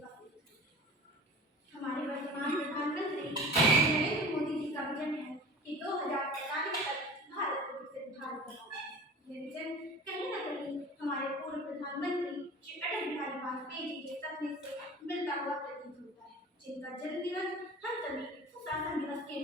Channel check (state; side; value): normal; both; correlation 0.39